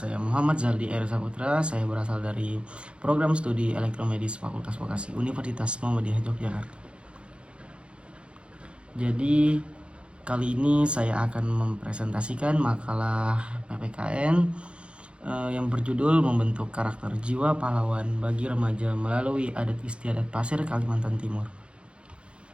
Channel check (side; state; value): left; late; 0.058 ms